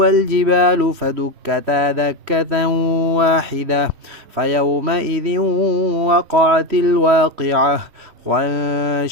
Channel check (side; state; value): left; late; 3.1 ms